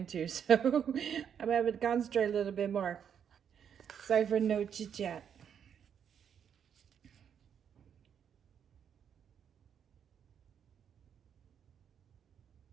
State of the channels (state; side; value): quieter; left; 8.2 dB